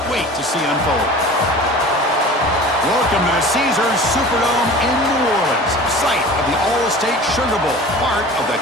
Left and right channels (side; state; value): both; normal; correlation 0.40